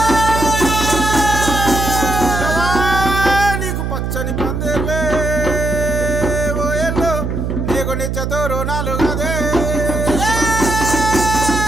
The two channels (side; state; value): right; noise; hum, 2 dB below the sound